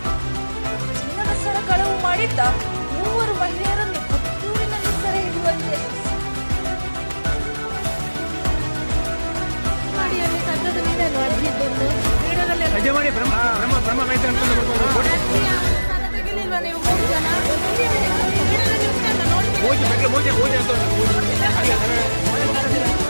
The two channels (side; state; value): both; inverted; correlation -1.00